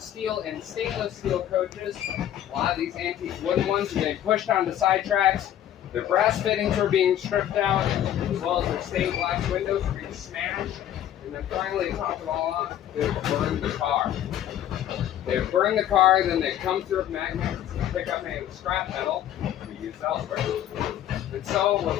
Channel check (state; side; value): quieter; right; 11.3 dB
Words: and stainless steel coaches, a lot of these antique wooden ones were getting pushed onto side tracks. Their brass fittings were being stripped out, as well as their stained glass windows were being smashed. And then finally, to top it all off, they would burn the car. They would burn the car, then they'd come through with magnets and pick up any scrap metal to be used elsewhere. And so,